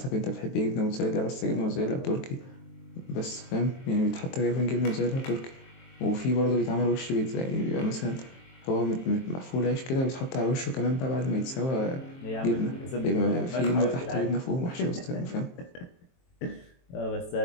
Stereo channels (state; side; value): late; right; 23 ms